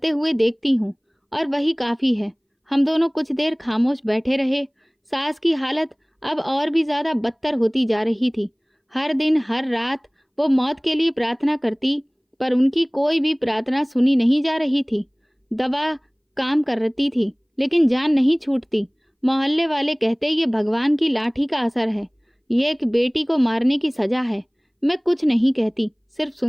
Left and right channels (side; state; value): both; identical; correlation 1.00